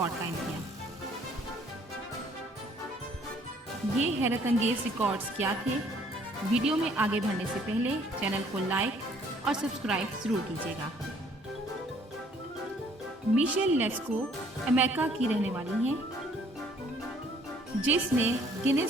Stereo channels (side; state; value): both; normal; correlation 0.61